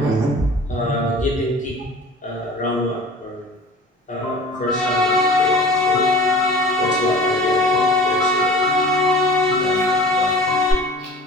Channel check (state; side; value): normal; both; correlation 0.41